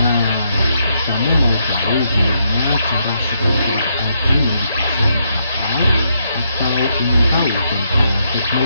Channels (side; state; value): both; inverted; correlation -0.78